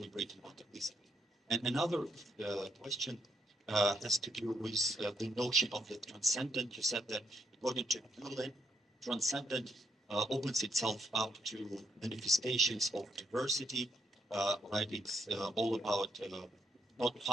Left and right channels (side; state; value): both; normal; correlation 0.76